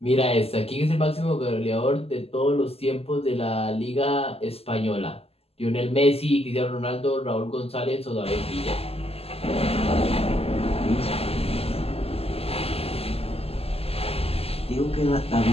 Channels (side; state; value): right; late; 0.29 ms